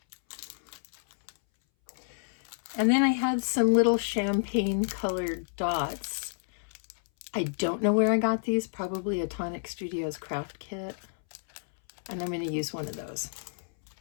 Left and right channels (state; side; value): silent; right; 58 dB below the other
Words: And then I had some little champagne colored dots. I don't know where I got these, probably a Tonic Studios craft kit. And I'm going to use one of those.